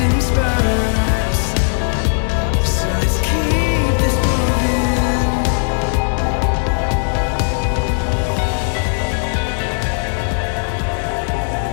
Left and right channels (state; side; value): silent; right; digital silence